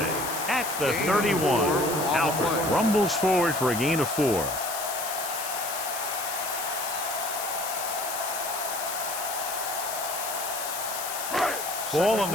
at the 31. Alford rumbles forward for a gain of 4. Ball on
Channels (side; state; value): left; noise; hiss, 5 dB below the sound